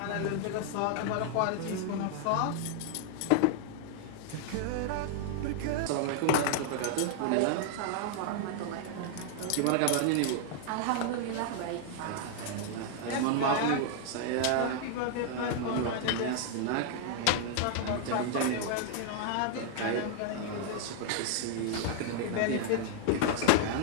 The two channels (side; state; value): both; different; correlation 0.00